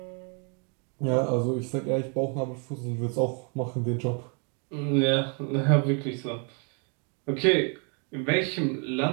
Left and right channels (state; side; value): quieter; left; 37.6 dB